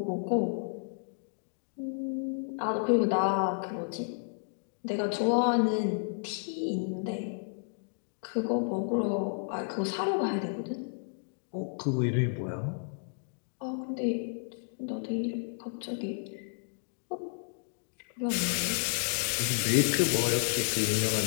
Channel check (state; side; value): silent; right; digital silence